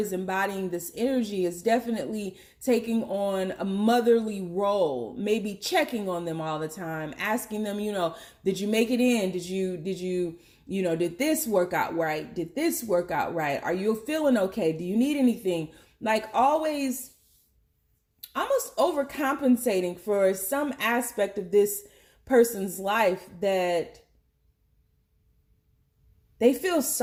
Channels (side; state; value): both; identical; correlation 1.00